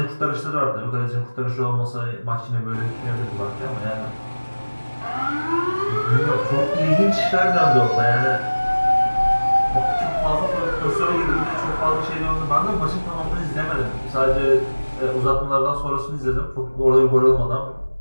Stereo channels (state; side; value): inverted; both; correlation -1.00